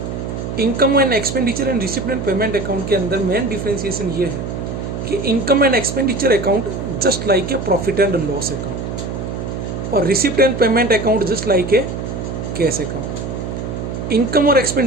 Income and expenditure and receipt and payment account के अंदर मेन डिफ्रेंशिएशन ये है कि income and expenditure account just like a profit and loss account और receipt and payment account just like a cash account. Income और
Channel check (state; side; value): noise; right; hum, 5 dB below the sound